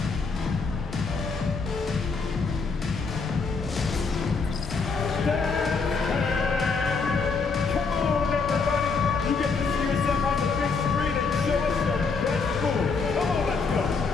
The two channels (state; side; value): quieter; right; 4.7 dB